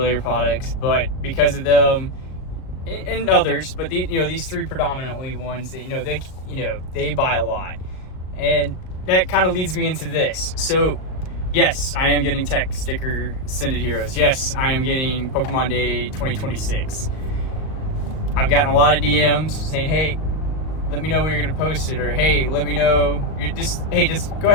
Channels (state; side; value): late; right; 38 ms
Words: products, but because of them and others, but these 3 predominantly ones that they buy a lot, and that kind of leads me into this. So, yes, I am getting tech sticker Sended Heroes. Yes, I am getting Pokemon Day 2026. I've gotten a lot of DMs saying, hey, let me know when you're going to post it, or hey, let me know, just go